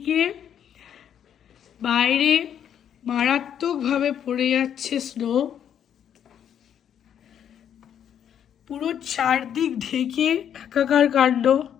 বাইরে মারাত্মকভাবে পড়ে যাচ্ছে স্নো। পুরো চারদিক ঢেকে একাকার কাণ্ড।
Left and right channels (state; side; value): quieter; right; 9.2 dB